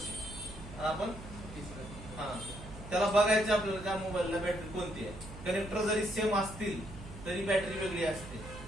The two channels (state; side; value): noise; right; hum, 13 dB below the sound